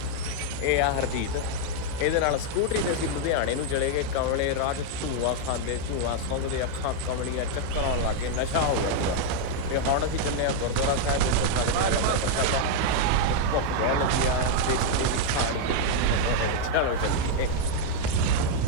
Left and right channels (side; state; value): both; different; correlation 0.00